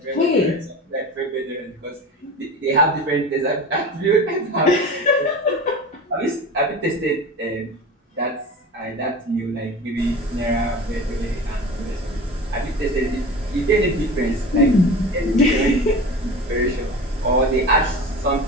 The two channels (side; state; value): both; normal; correlation 0.33